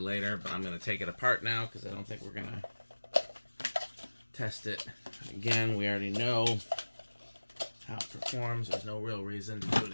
but I'm going to take it apart now because I don't think we're going to test it. Again, we already know how it performs. There's no real reason to do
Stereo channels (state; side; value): inverted; both; correlation -1.00